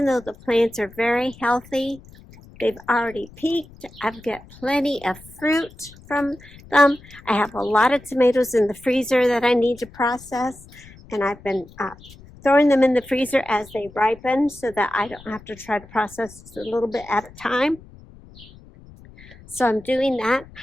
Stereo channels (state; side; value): noise; left; rumble, 22 dB below the sound